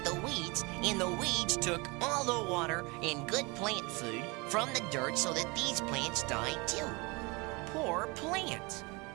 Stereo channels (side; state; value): left; quieter; 27.0 dB